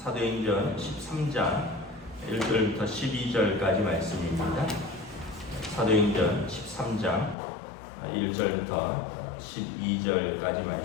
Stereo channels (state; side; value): drops out; right; at 7.4 s